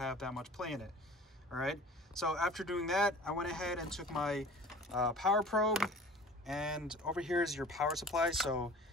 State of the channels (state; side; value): normal; both; correlation 0.44